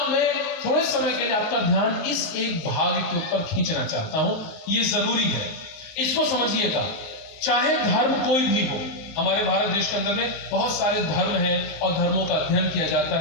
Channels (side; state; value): right; late; 19 ms